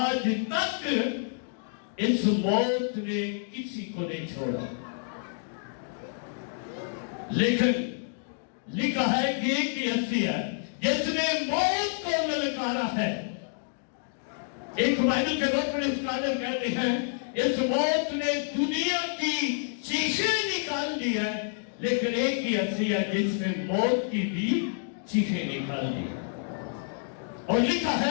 تک اس موت نے کسی کو نہیں چھوڑا، لیکن لکھا ہے کہ ایک ہی ہستی ہے جس نے موت کو للکارا ہے۔ ایک بائبل کے وقت میں اسکالر کہتے ہیں اس موت نے دنیا کی چیخیں نکال دی ہے، لیکن ایک ہی ہستی ہے جس نے موت کی بھی چیخیں نکال دی۔ اور لکھا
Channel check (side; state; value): right; silent; digital silence